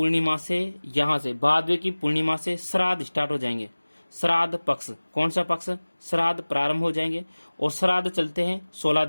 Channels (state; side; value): inverted; both; correlation -1.00